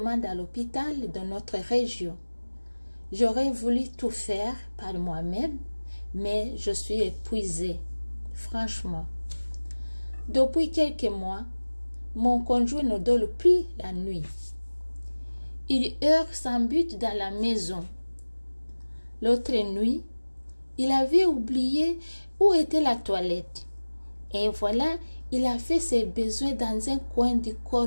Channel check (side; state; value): both; inverted; correlation -1.00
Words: à l'hôpital de notre région. J'aurais voulu tout faire par moi-même, mais je suis épuisée, franchement. Depuis quelques mois, mon conjoint ne dort plus la nuit. Il erre sans but dans la maison. L'autre nuit, il avait oublié où était la toilette. Et voilà, il a fait ses besoins dans un coin du